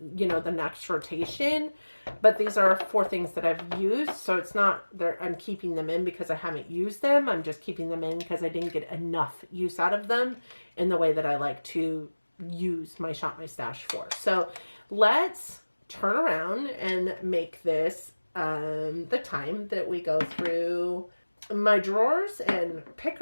next rotation. But these are 4 things that I've used. So it's not I'm keeping them in because I haven't used them. I'm just keeping them in because I didn't get enough use out of them in the way that I like to use my Shop My Stash for. So let's turn around and make this the time that we go through my drawers and pick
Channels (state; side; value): inverted; both; correlation -1.00